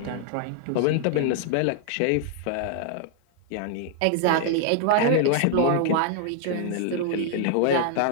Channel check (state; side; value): different; both; correlation 0.00